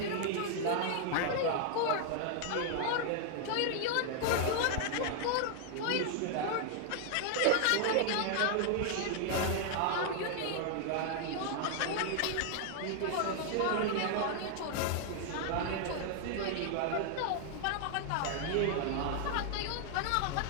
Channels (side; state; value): both; different; correlation 0.00